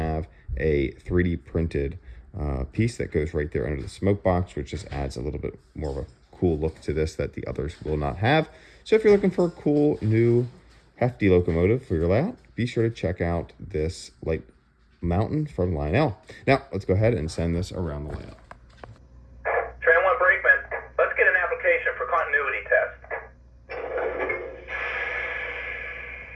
a 3D printed piece that goes right there under the smoke box, which just adds a little bit more of a cool look to this that the others will not have. So if you're looking for a cool, new, hefty locomotive for your layout, be sure to check out this Light Mountain from Lionel. Now, let's go ahead and send this around the layout. For continuity test.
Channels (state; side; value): identical; both; correlation 1.00